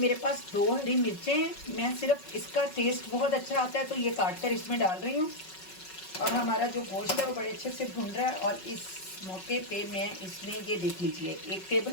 पास 2 हरी मिर्चें हैं, मैं सिर्फ इसका टेस्ट बहुत अच्छा आता है तो ये काट कर इसमें डाल रही हूँ। और हमारा जो गोश्त है वो बड़े अच्छे से भुन रहा है। और इस मौके पे मैं इसमें ये देख लीजिए 1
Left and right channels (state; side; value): late; right; 5.4 ms